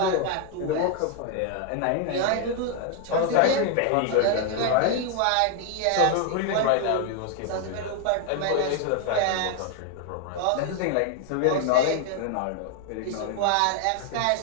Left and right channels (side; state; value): both; different; correlation 0.00